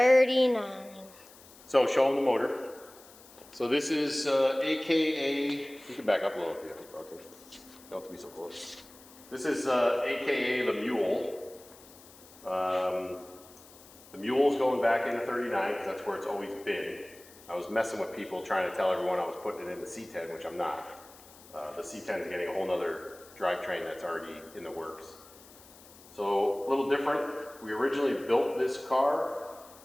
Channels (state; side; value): noise; left; hiss, 22 dB below the sound